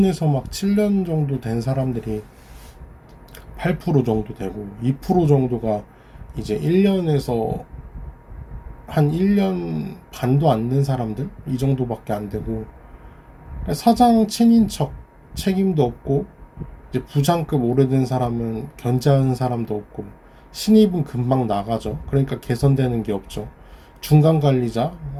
막 7년 정도 된 사람들이 8% 정도 되고 2% 정도가 이제 1년에서 한 1년 반도 안 된 사람들 이 정도밖에 안 되고. 사장 친인척 책임도 없고 이제 부장급 오래된 사람은 견제하는 사람도 없고 신입은 금방 나가죠. 그러니까 개선되는 게 없죠. 중간 관리자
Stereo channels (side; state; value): both; identical; correlation 1.00